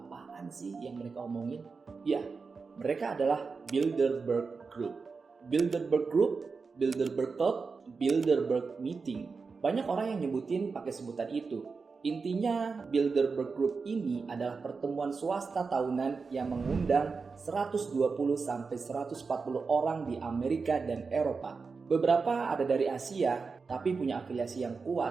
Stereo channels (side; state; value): left; quieter; 4.7 dB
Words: sih yang mereka omongin? Ya, mereka adalah Bilderberg Group. Bilderberg Group, Bilderberg Thought, Bilderberg Meeting. Banyak orang yang nyebutin pakai sebutan itu. Intinya, Bilderberg Group ini adalah pertemuan swasta tahunan yang mengundang 120-140 orang di Amerika dan Eropa. Beberapa ada dari Asia, tapi punya afiliasi yang